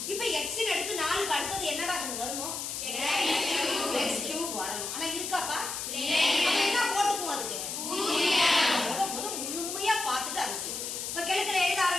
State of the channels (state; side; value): noise; left; hiss, 5 dB below the sound